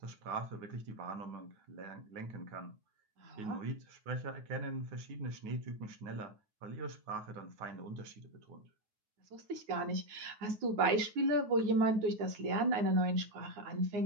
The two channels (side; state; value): left; late; 9.4 ms